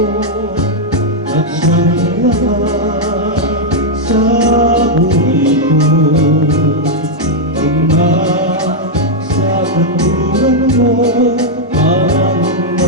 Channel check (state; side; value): normal; both; correlation -0.02